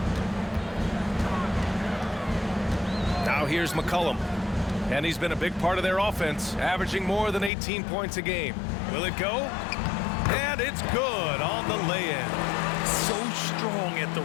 Now here's McCollum. And he's been a big part of their offense, averaging more than 18 points a game. Will it go? And it's good on the lay-in. So strong at the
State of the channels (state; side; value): drops out; right; at 7.5 s